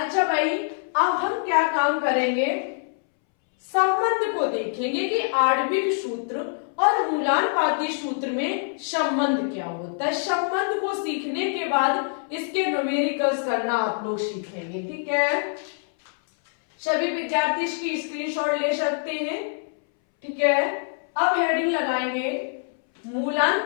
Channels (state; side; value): silent; right; 62 dB below the other